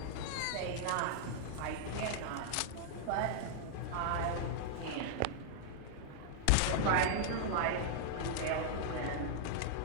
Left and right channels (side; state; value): both; different; correlation -0.01